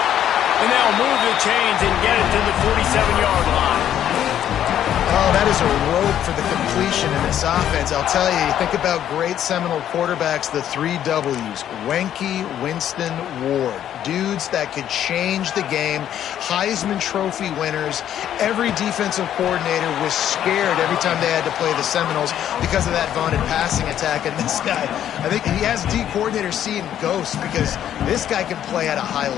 And they'll move the chains and get it to the 47-yard line. Oh, that is a rope for the completion in this offense. I'll tell you, you think about great Seminole quarterbacks, the 3 W's, Wenke, Winston, Ward. Dudes that could change the game, Heisman Trophy winners. Every defensive coordinator was scared every time they had to play the Seminoles because of that vaunted passing attack. And this guy, I think he has D coordinators seeing ghosts because this guy can play at a high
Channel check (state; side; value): quieter; right; 10.6 dB